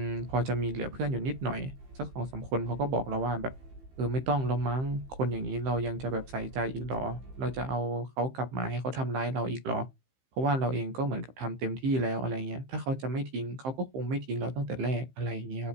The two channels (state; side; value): late; left; 15 ms